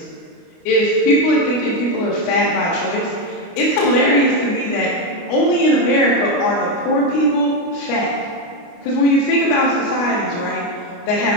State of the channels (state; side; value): late; right; 29 ms